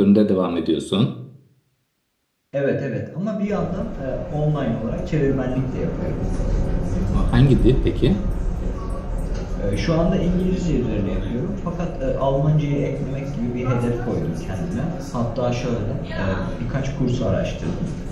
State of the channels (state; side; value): identical; both; correlation 1.00